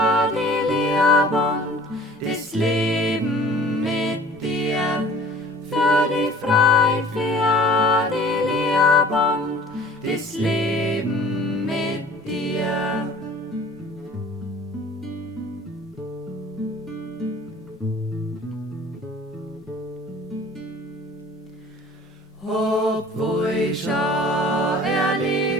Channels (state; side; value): normal; both; correlation 0.48